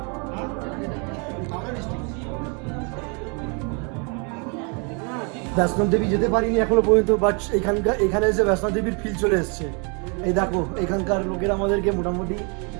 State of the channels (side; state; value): left; quieter; 35.0 dB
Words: বৈষ্ণব দেবী যেতে পারিনি এখনো পর্যন্ত, বাট এখানে এসে বৈষ্ণব দেবীর ফিল চলে এসছে। এই দেখো, এখানকার লোকেরা আমাদেরকে মোটামুটি